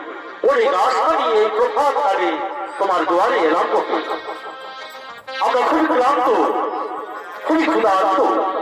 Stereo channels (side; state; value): both; identical; correlation 1.00